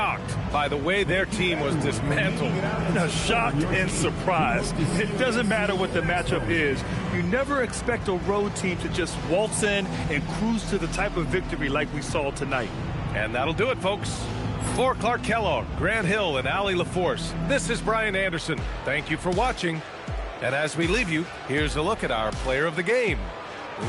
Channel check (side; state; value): both; identical; correlation 1.00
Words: by the way their team was dismantled. Now, shocked and surprised. It doesn't matter what the matchup is. You never expect a road team to just waltz in and cruise to the type of victory like we saw tonight. And that'll do it, folks. For Clark Kellogg, Grant Hill, and Allie LaForce, this is Brian Anderson. Thank you for watching. And as we leave you, here's a look at our player of the game,